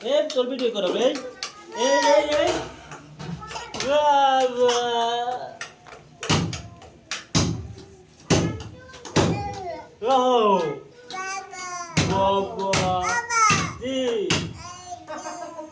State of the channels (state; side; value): identical; both; correlation 1.00